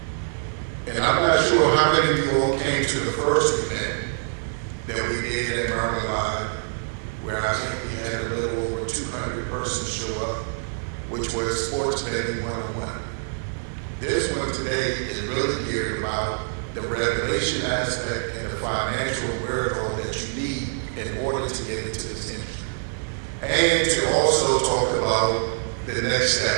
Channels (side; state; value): left; silent; digital silence